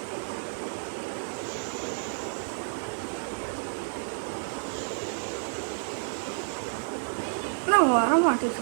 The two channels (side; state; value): left; silent; digital silence